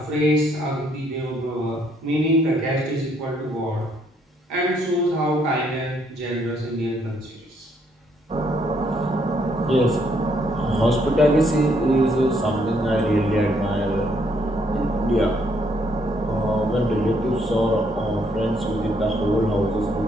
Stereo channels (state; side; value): normal; both; correlation 0.70